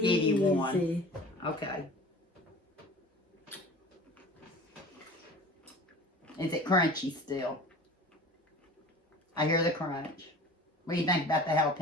give you one. Okay. Is it crunchy still? I hear the crunch. What do you think about the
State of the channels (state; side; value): normal; both; correlation 0.41